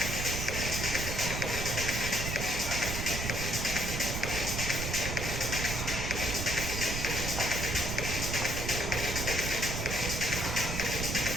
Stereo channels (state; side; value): noise; right; rumble, 3 dB below the sound